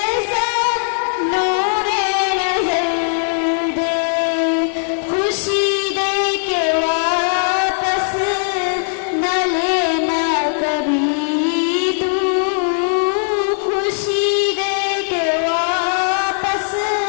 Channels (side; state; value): right; silent; 67 dB below the other